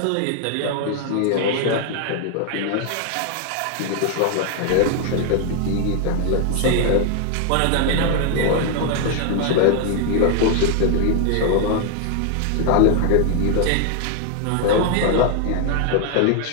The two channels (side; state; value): both; different; correlation 0.00